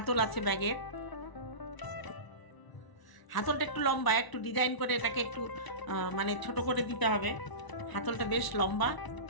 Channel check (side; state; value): right; late; 1.0 ms